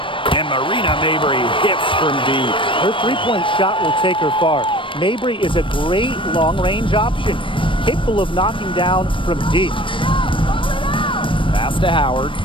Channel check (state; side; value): late; right; 0.25 ms